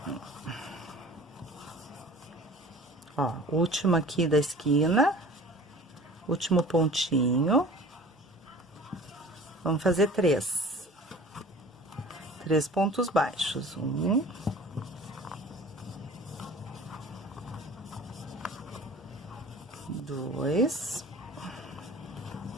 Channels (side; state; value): both; normal; correlation 0.44